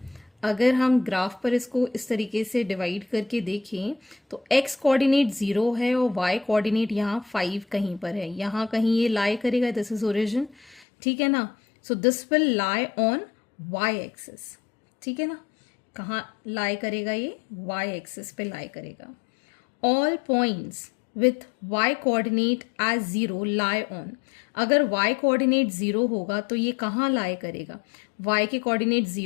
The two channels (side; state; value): right; drops out; at 10.9 s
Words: अगर हम ग्राफ पर इसको इस तरीके से डिवाइड करके देखें तो x कोऑर्डिनेट 0 है और y कोऑर्डिनेट यहाँ 5 कहीं पर है, यहाँ कहीं ये lie करेगा। दिस इज ओरिजिन, ठीक है ना। So this will lie on y axis, ठीक है ना। कहाँ लाई करेगा? ये y एक्सिस पे लाई करेगा। All points with y coordinate as 0 lie on. अगर y कोऑर्डिनेट 0 होगा तो ये कहाँ लाई करेगा? y के कोऑर्डिनेट